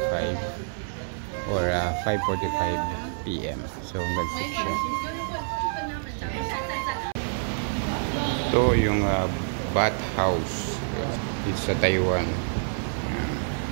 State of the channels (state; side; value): silent; left; 60 dB below the other